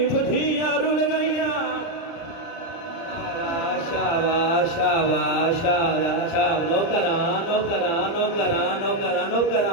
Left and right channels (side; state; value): right; late; 30 ms